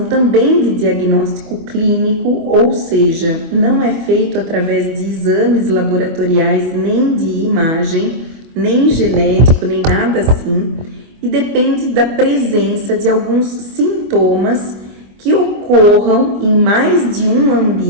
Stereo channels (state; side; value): late; left; 25 ms